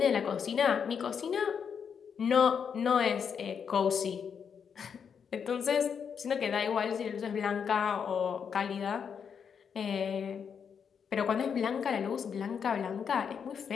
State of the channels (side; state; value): right; quieter; 7.0 dB